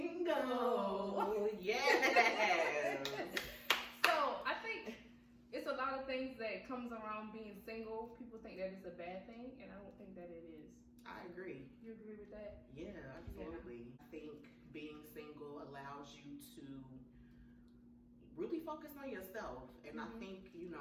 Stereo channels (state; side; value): identical; both; correlation 1.00